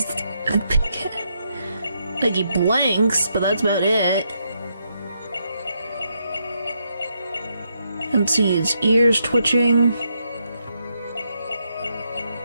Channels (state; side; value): inverted; both; correlation -0.79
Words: like he blinks, but that's about it. I don't see his ears twitching.